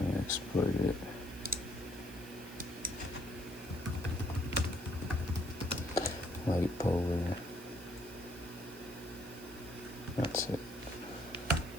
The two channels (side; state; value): right; noise; hiss, 17 dB below the sound